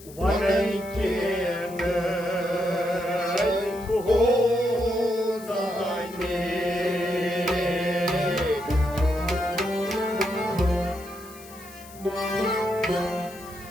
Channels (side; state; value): left; noise; hiss, 20 dB below the sound